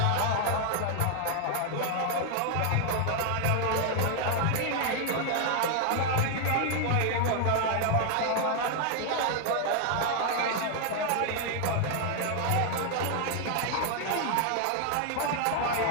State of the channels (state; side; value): different; both; correlation 0.00